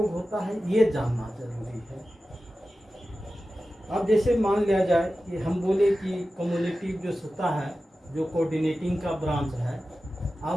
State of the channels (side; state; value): both; normal; correlation 0.94